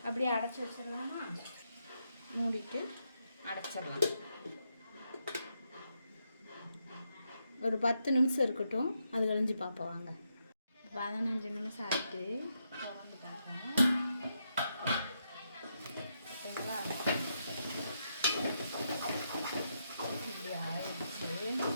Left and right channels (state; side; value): inverted; both; correlation -0.81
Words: அப்படியே அடைச்சி வச்சிடலாமா? மூடிட்டு அடைச்சிடலாம். ஒரு 10 நிமிஷம் இருக்கட்டும், அது கழிஞ்சு பார்ப்போம் வாங்க. 15 நிமிஷம் ஆகிட்டு திறந்து பார்ப்போம். ஓகேங்களா? இப்படி ஆயிடுச்சு.